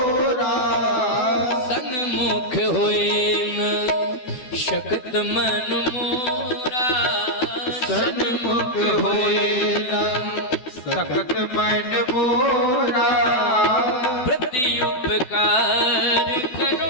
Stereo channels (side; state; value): right; late; 12 ms